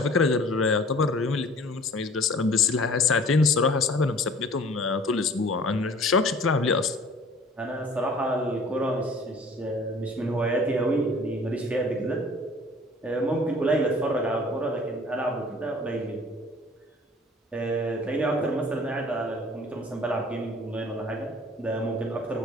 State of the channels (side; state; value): both; normal; correlation 0.49